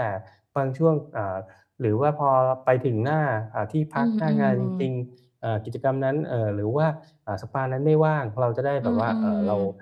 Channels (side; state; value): both; identical; correlation 1.00